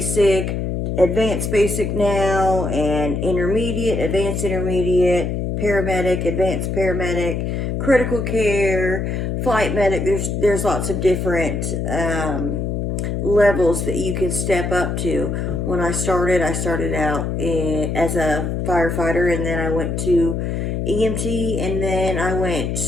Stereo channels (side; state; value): left; noise; hum, 1 dB below the sound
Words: advanced basic now, and intermediate, advanced intermediate, paramedic, advanced paramedic, critical care, flight medic. There's lots of different levels that you can step up to. When I started out as a firefighter, and then I went to EMT, and then I went